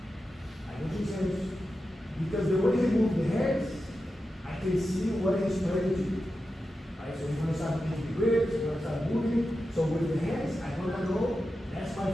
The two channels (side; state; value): both; normal; correlation 0.91